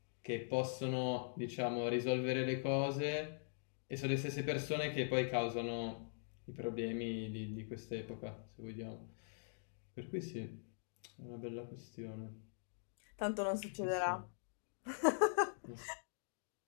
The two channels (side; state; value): right; silent; digital silence